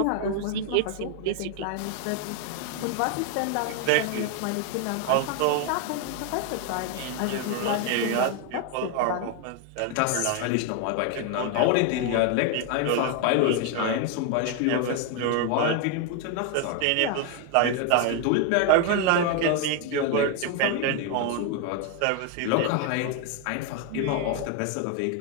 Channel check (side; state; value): both; different; correlation 0.01